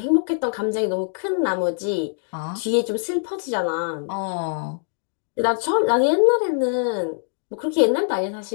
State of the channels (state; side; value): silent; right; digital silence